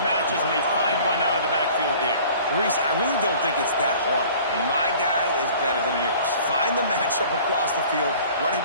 and they find one out of the backfield there. Reese, I really don't think it's that hard. My guy is better than yours. Find the matchup across the field. Running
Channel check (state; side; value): inverted; both; correlation -0.48